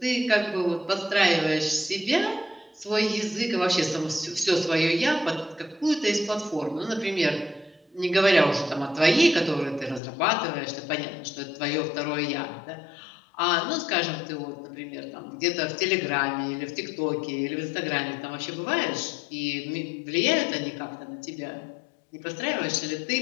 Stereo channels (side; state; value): right; drops out; at 10.0 s